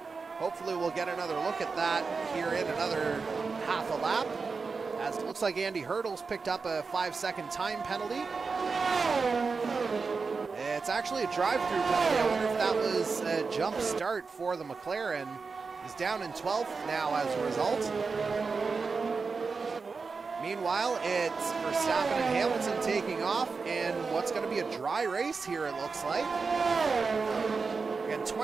Hopefully we'll get another look at that here in another half a lap, as it looks like Andy Hurdle's picked up a 5-second time penalty. It's actually a drive-through penalty. I wonder if that was a jump start for the McLaren. He's down in 12th now as a result. Meanwhile, it's Verstappen and Hamilton taking off in what's going to be a dry race here, it looks like. Again,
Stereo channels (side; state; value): left; quieter; 4.7 dB